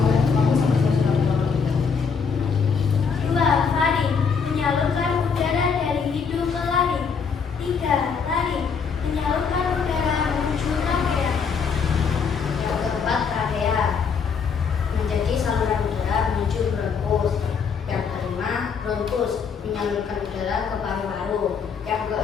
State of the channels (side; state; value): right; quieter; 5.9 dB